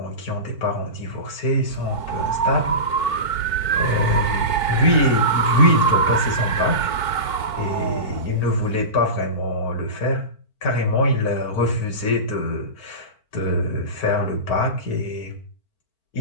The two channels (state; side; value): late; right; 4.5 ms